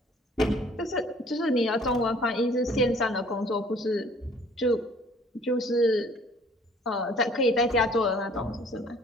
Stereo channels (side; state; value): both; normal; correlation 0.55